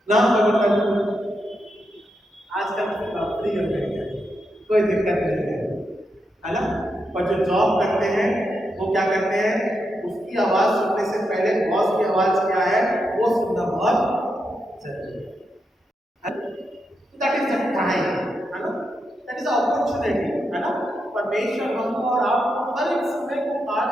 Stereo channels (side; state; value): both; normal; correlation 0.84